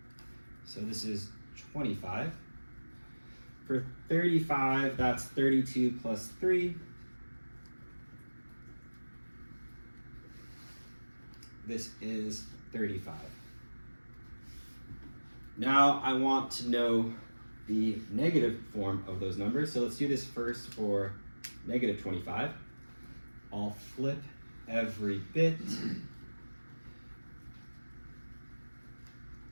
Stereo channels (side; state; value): both; inverted; correlation -1.00